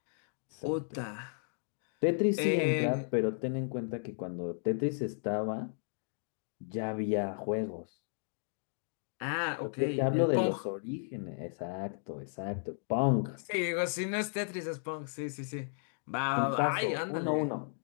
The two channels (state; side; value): silent; right; digital silence